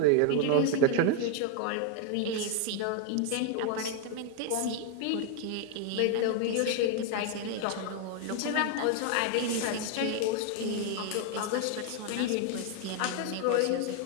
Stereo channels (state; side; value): different; both; correlation 0.00